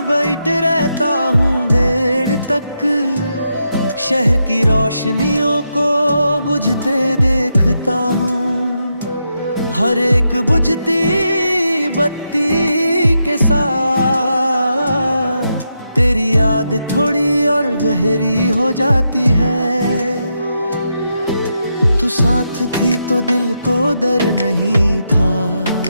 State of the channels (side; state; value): both; inverted; correlation -0.84